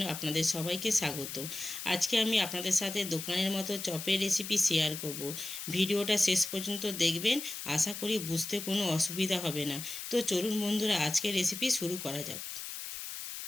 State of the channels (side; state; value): left; noise; hiss, 8 dB below the sound